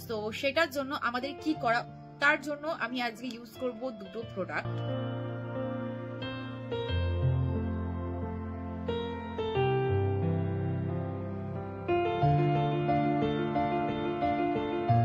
তো সেটার জন্য আমাদের কি করা, তার জন্য আমি আজকে ইউজ করব দুটো প্রোডাক্ট।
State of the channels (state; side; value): identical; both; correlation 1.00